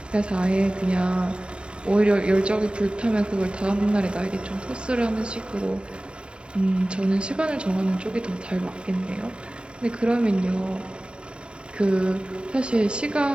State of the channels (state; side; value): late; left; 0.052 ms